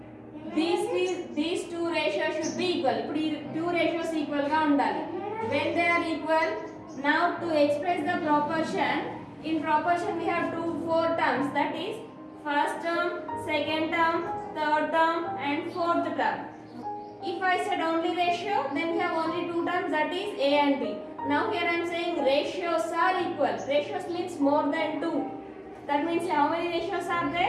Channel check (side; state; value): both; identical; correlation 1.00